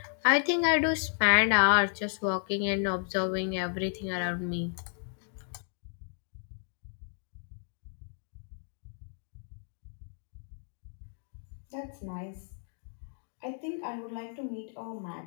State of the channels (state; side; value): silent; right; digital silence